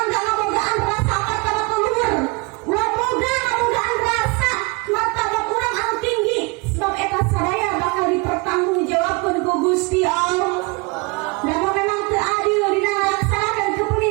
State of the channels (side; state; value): left; quieter; 28.1 dB